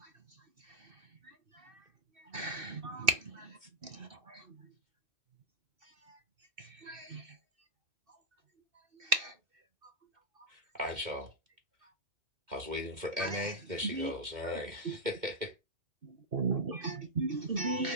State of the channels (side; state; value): left; late; 2.6 ms